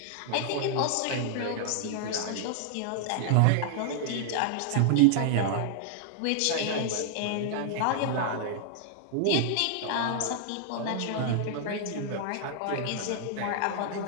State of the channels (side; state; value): both; different; correlation -0.01